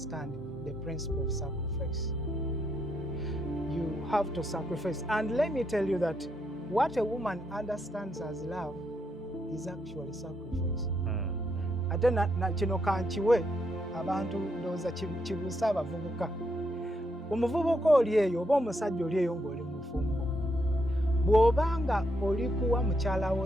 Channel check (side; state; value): both; normal; correlation 0.78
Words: the principle of sacrifice. You have to sacrifice. And let me tell you that what a woman understands as love is actually sacrifice. Ate na kino kankiwe abantu ndowooza kibuusa abavubuka. Omuvubuka oli eyo oba omusajja oli eyo ng'oli mu bufumbo, bw'obanga oli kuwa mukyala